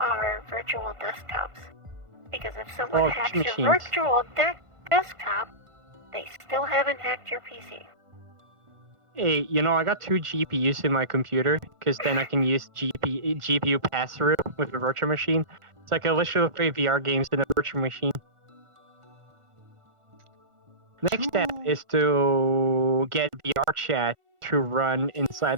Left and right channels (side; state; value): left; late; 1.4 ms